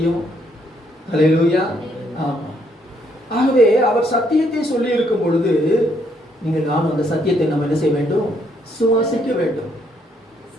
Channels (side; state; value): both; normal; correlation 0.71